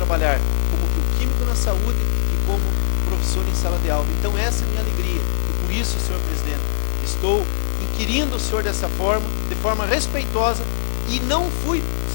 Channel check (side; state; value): right; silent; 64 dB below the other